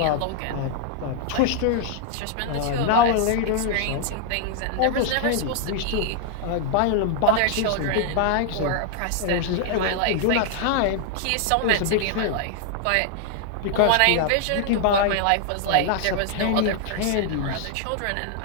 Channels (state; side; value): different; both; correlation 0.00